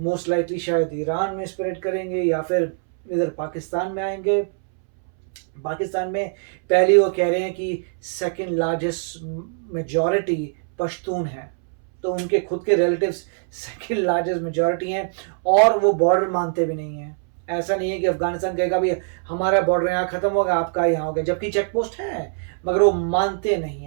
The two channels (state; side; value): silent; left; 64 dB below the other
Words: लाइकली शायद ईरान में स्प्रेड करेंगे या फिर इधर पाकिस्तान में आएंगे। पाकिस्तान में पहले वो कह रहे हैं कि सेकंड लार्जेस्ट मेजॉरिटी पश्तून है, तो उनके खुद के रिलेटिव्स सेकंड लार्जेस्ट मेजॉरिटी हैं और वो बॉर्डर मानते भी नहीं हैं। ऐसा नहीं है कि अफगानिस्तान कहेगा भी हमारा बॉर्डर यहाँ खत्म हो गया, आपका यहाँ हो गया, जबकि चेक पोस्ट है, मगर वो मानते नहीं